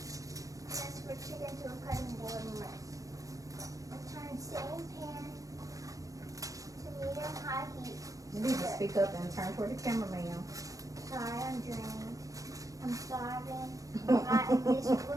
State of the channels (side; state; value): left; late; 0.16 ms